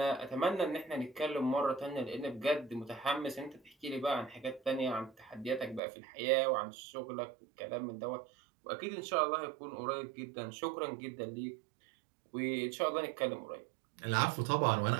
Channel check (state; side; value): drops out; left; at 5.8 s